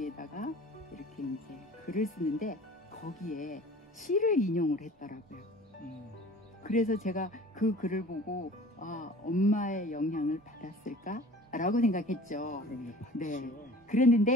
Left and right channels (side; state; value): both; normal; correlation 0.44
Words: 이렇게 이제 글을 쓰는데 거기에 시를 인용을 했더라고요. 그래서 제가 그 글을 보고 엄마의 영향을 받았을까? 라고 생각했죠. 네.